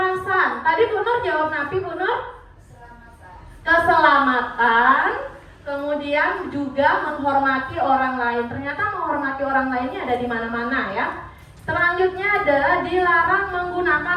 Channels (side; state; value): both; identical; correlation 1.00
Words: Tadi Bu Nur jawab napi Bu Nur? Keselamatan. Kemudian juga menghormati orang lain. Ternyata menghormati orang lainnya ada di mana-mana ya. Selanjutnya adalah dilarang